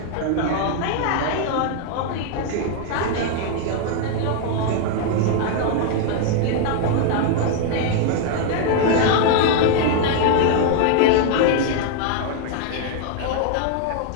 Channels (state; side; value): different; both; correlation 0.00